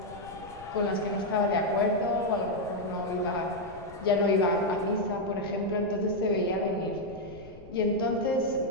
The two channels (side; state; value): left; noise; rumble, 19 dB below the sound